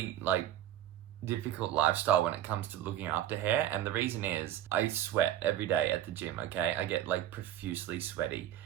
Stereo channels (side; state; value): left; quieter; 12.0 dB